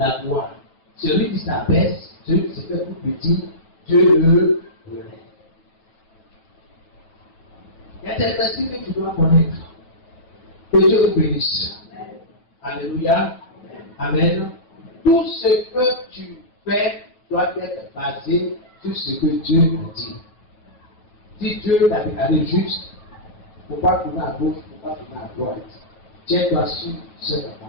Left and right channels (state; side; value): late; right; 8.9 ms